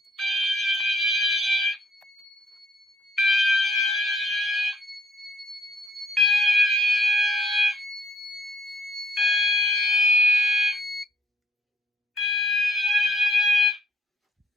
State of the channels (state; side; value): normal; both; correlation 0.66